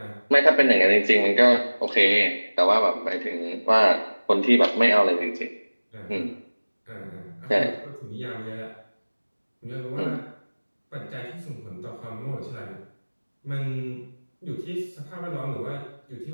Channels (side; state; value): both; inverted; correlation -1.00